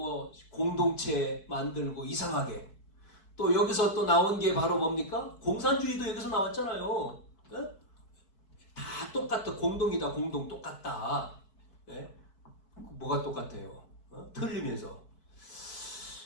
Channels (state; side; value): late; right; 4.6 ms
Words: 공동체 만들고 이상하게 또 여기서 또 나온 게 바로 뭡니까? 공산주의도 여기서 나왔잖아요. 다 똑같다. 공동이다. 공동 똑같다. 뭐가 똑같아요? 틀리면서.